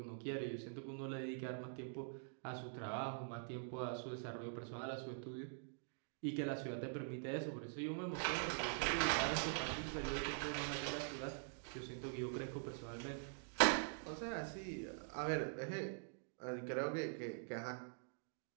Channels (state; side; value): silent; left; digital silence